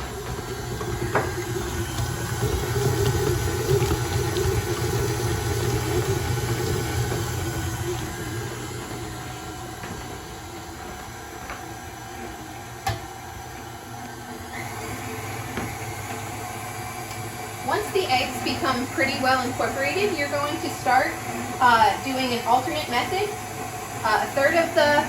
Once the eggs become pretty well incorporated, you're going to start doing an alternate method. A third of the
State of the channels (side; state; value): both; identical; correlation 1.00